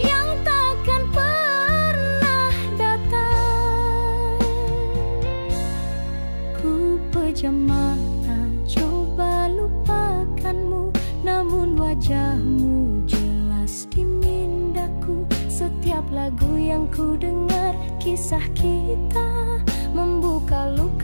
takkan pernah datang. Ku pejam mata coba lupakanmu, namun wajahmu jelas di mindaku. Setiap lagu yang ku dengar kisah kita, membuka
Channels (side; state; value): both; inverted; correlation -1.00